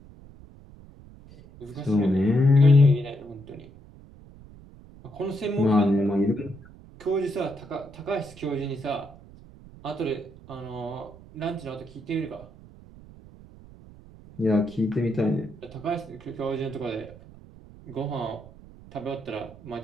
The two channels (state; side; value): noise; right; rumble, 20 dB below the sound